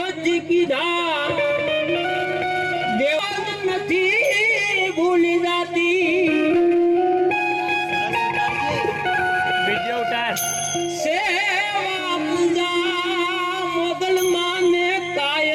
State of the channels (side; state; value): both; identical; correlation 1.00